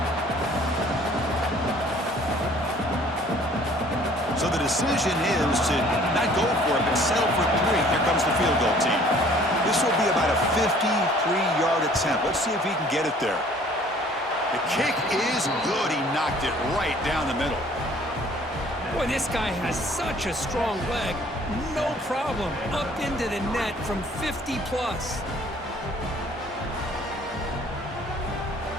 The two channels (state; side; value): normal; both; correlation 0.55